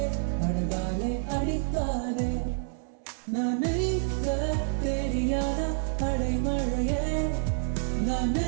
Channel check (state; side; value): silent; left; 59 dB below the other